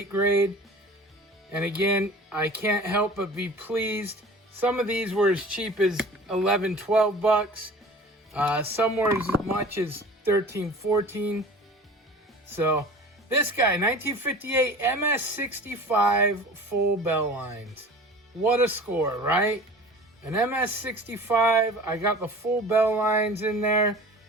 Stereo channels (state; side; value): normal; both; correlation 0.41